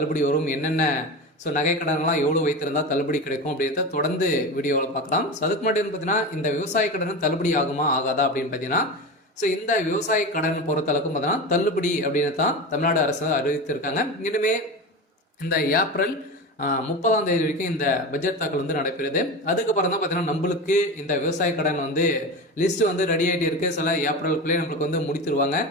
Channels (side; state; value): both; normal; correlation 0.25